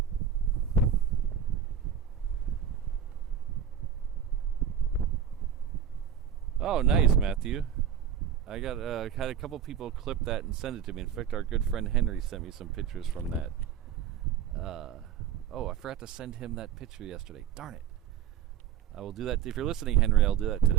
Oh, nice, Matthew. I got had a couple people clip that and send it to me. In fact, our good friend Henry sent me some pictures from that. Oh, I forgot to send him that picture yesterday. Darn it. I will do that. If you're listening, Henry, I'll do that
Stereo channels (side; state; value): left; quieter; 8.7 dB